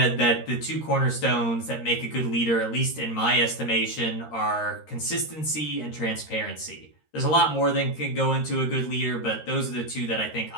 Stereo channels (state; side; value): late; right; 13 ms